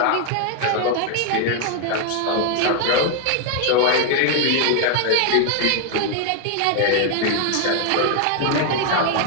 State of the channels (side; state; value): both; different; correlation 0.00